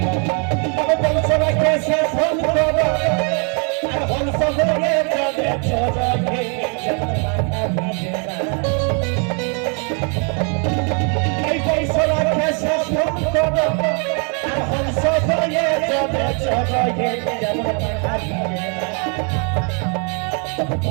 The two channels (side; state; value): left; quieter; 38.3 dB